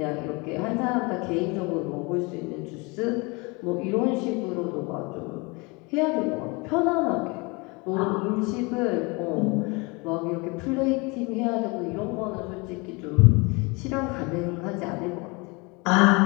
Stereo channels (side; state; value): right; quieter; 27.9 dB